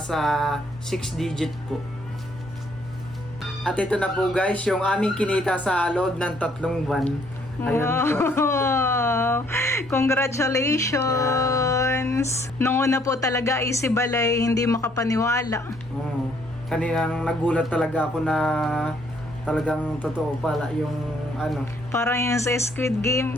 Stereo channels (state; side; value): normal; both; correlation 0.66